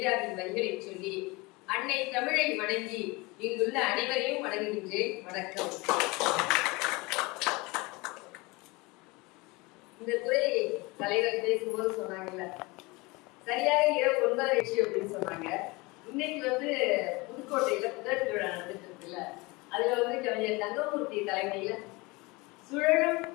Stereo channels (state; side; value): quieter; right; 24.6 dB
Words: வரிகளை சொல்லி அன்னை தமிழை வணங்கி இங்குள்ள அனைவரையும் வணங்குகின்றேன். வணக்கம். இந்த துறை தலைவர் பேசும்போது சொன்னாங்கல்ல, சரியாக இரவு 9:30 அப்படின்னு சொன்னாங்க. இன்னைக்கு புதுக்கோட்டையில புத்தக திருவிழா நடந்துட்டு இருக்குல்ல, அதுல கவிஞர் தங்கமூர்த்தி தலைமையில சுழலும்